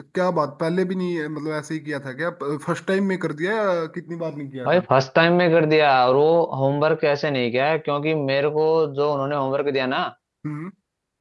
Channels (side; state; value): both; identical; correlation 1.00